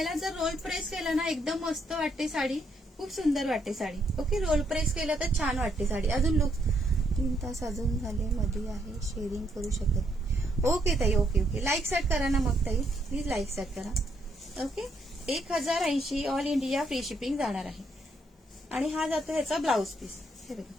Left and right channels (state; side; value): normal; both; correlation 0.74